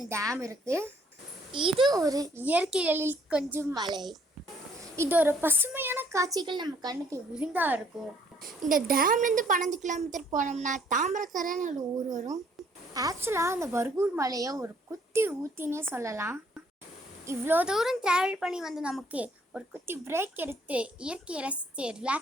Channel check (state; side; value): normal; both; correlation 0.64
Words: டேம் இருக்குது. இது ஒரு இயற்கை எழில் கொஞ்சம் மலை. இது ஒரு பசுமையான காட்சிகள் நம்ம கண்ணுக்கு விருந்தா இருக்கும். இந்த டேம்லேருந்து 12 கிலோமீட்டர் போனோம்னா தாமிரக்கரைன்னு ஒரு ஊர் வரும். ஆக்சுவலாக அந்த பர்கூர் மலையை ஒரு குட்டி ஊத்தினே சொல்லலாம். இவ்வளோ தூரம் ட்ராவல் பண்ணி நமக்கு ஒரு குட்டி பிரேக் எடுத்து இயற்கையை ரசித்து